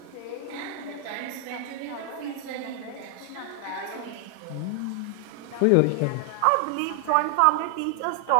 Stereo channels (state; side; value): different; both; correlation 0.00